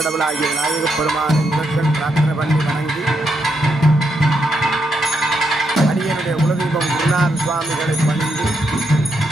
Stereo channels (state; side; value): normal; both; correlation 0.80